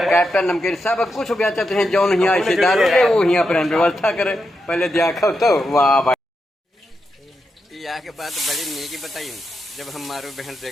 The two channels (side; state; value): both; normal; correlation 0.86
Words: कैप्टन नमकीन सब कुछ बेचत हैं। जौन यहाँ ऐसे दारू है वो यहाँ पर व्यवस्था करे। पहले देखो तो वाह भाई। यहाँ के बात बड़ी नीकी बताई। जब हम मारू बहन